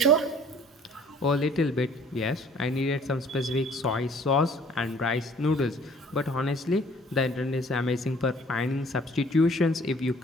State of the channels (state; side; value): normal; both; correlation 0.55